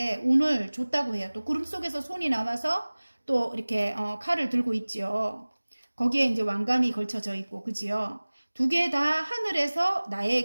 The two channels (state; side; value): inverted; both; correlation -1.00